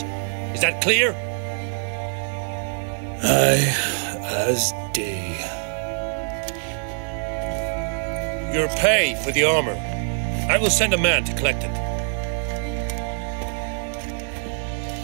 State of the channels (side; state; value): left; silent; digital silence